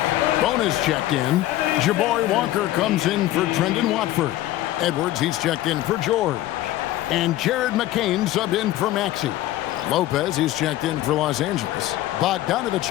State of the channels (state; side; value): quieter; right; 14.9 dB